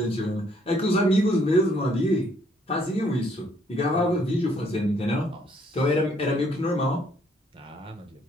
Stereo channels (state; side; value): normal; both; correlation 0.66